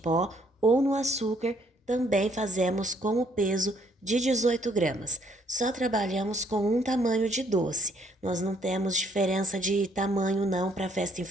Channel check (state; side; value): normal; both; correlation 0.67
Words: ou no açúcar, também fazemos com o peso de 18 gramas. Só trabalhamos com um tamanho de doce. Nós não temos diferença de tamanho não para festa